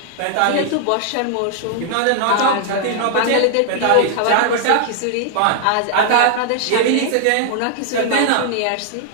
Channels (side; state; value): both; different; correlation -0.01